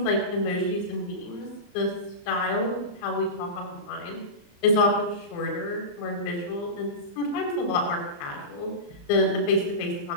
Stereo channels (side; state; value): right; late; 34 ms